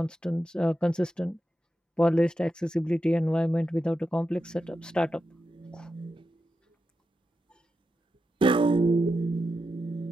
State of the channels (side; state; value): both; normal; correlation 0.88